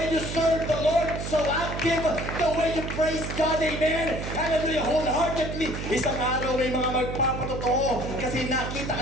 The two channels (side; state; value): right; noise; hum, 5 dB below the sound